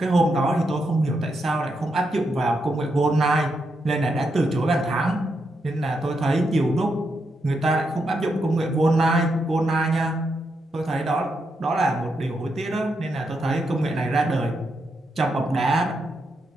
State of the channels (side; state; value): both; normal; correlation 0.82